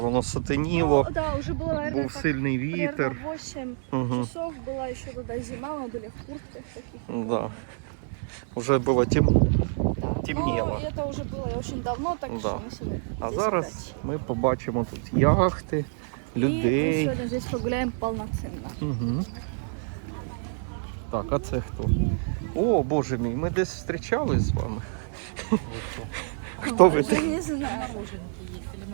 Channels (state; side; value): silent; left; 60 dB below the other